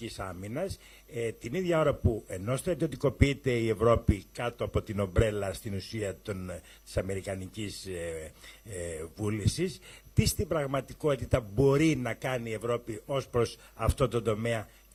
άμυνας, την ίδια ώρα που ενώ στρατιωτικοποιείται η Ευρώπη κάτω από την ομπρέλα στην ουσία της αμερικανικής βούλησης, τι στην πραγματικότητα μπορεί να κάνει η Ευρώπη ως προς αυτό το τομέα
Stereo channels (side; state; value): both; identical; correlation 1.00